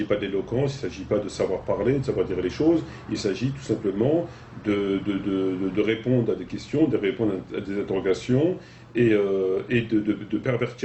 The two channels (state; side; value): identical; both; correlation 1.00